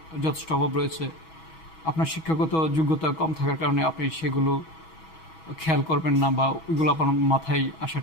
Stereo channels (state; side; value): late; right; 6.2 ms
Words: যথেষ্ট অভাব রয়েছে। আপনার শিক্ষাগত যোগ্যতা কম থাকার কারণে আপনি সেগুলো খেয়াল করবেন না, বা ওইগুলো আপনার মাথায়